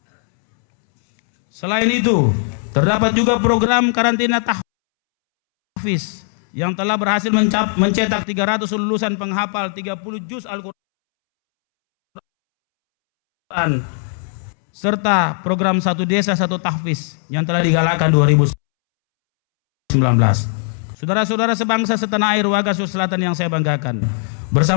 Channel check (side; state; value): right; silent; 67 dB below the other